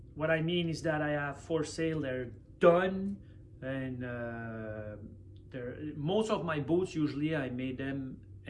I mean is that I have for sale, they're done, and most of my boots usually I made them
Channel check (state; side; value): identical; both; correlation 1.00